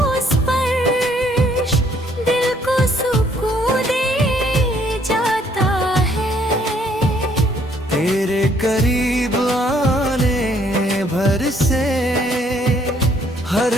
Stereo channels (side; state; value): both; normal; correlation 0.65